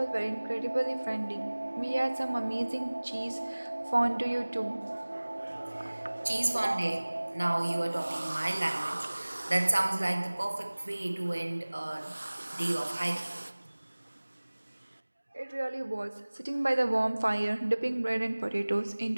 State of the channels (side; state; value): both; inverted; correlation -1.00